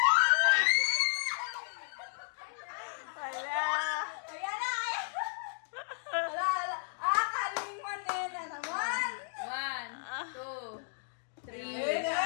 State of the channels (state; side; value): silent; right; digital silence